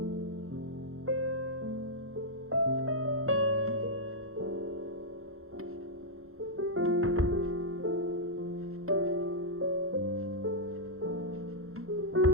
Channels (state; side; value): late; left; 0.62 ms